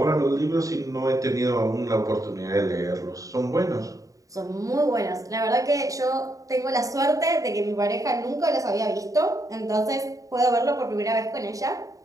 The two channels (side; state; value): left; late; 0.16 ms